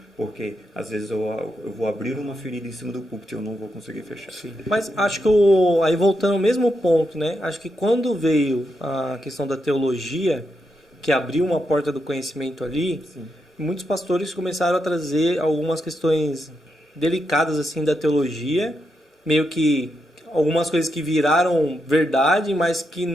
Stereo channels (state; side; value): normal; both; correlation 0.83